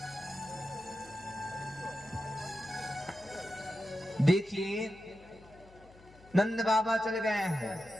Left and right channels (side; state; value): left; noise; hum, 23 dB below the sound